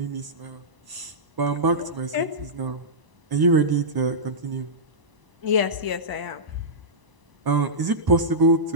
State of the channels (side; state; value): left; late; 1.0 ms